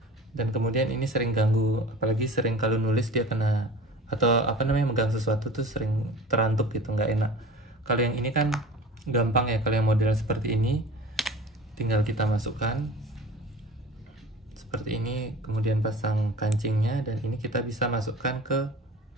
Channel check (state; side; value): normal; both; correlation 0.39